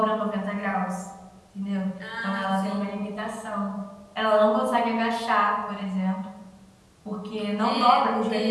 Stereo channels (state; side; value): identical; both; correlation 1.00